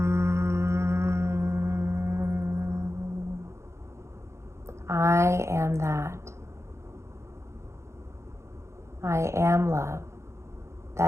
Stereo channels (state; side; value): late; left; 0.13 ms